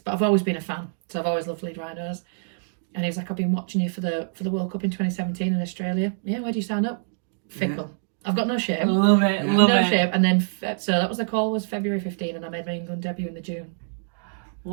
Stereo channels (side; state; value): left; silent; digital silence